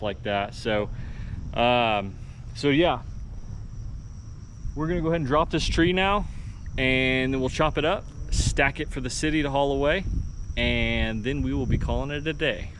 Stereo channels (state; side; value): identical; both; correlation 1.00